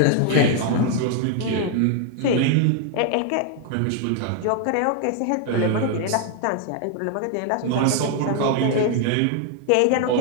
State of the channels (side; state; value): both; different; correlation 0.00